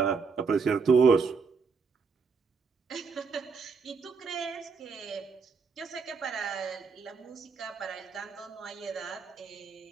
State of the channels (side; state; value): left; quieter; 5.1 dB